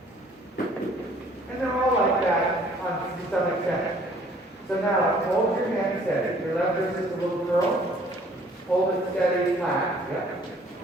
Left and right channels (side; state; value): both; normal; correlation 0.57